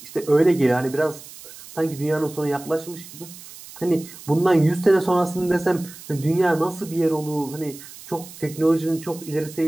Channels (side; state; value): right; noise; hiss, 17 dB below the sound